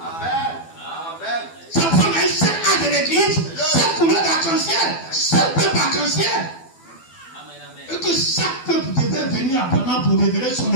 Ça prend un seul âge de l'église, seule couleur d'arc-en-ciel, seul peuple arc-en-ciel. Et que chaque peuple devait venir abondamment pour révéler son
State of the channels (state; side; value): late; right; 12 ms